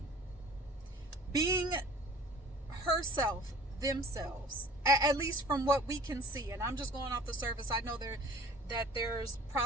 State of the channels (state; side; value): normal; both; correlation 0.47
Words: being herself, themselves, at least from what we can see. And I'm just going off the surface. I know that there's